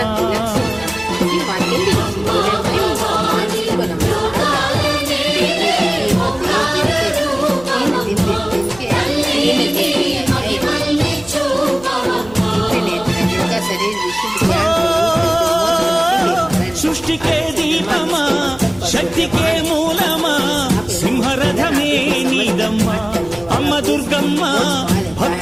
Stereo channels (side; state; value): right; noise; hum, 20 dB below the sound